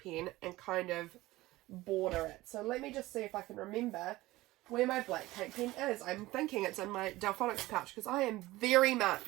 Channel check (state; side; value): quieter; left; 18.4 dB